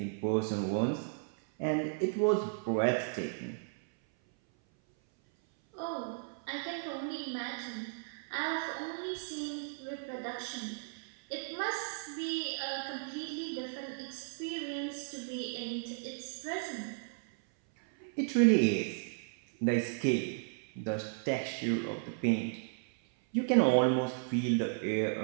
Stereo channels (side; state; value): left; silent; 55 dB below the other